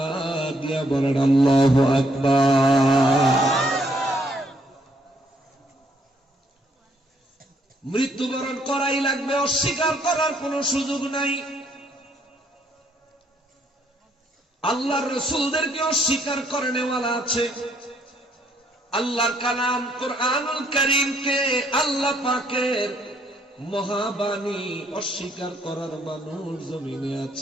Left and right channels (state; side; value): normal; both; correlation 0.69